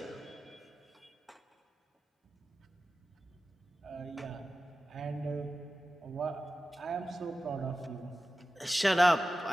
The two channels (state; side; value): normal; both; correlation 0.94